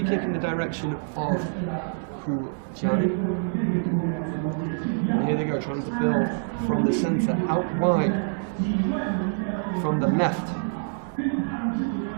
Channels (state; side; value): silent; left; digital silence